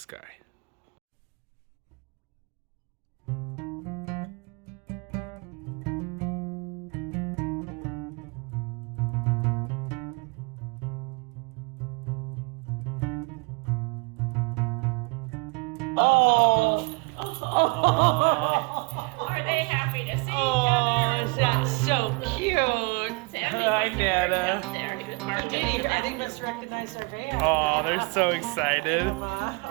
Are they happy to see each Oh, that's so cute. Hi, Nana. I think must recognize our van. Oh, they're so excited. I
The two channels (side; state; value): left; quieter; 29.8 dB